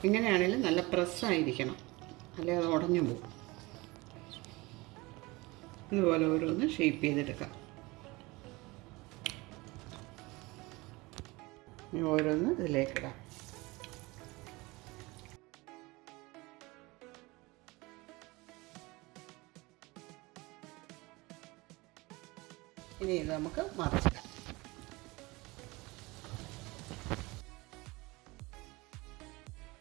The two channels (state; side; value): quieter; left; 23.1 dB